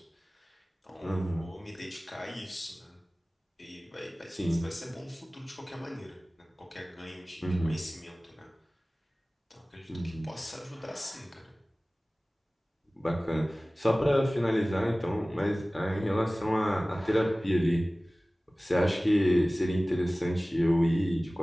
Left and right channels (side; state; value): both; normal; correlation 0.98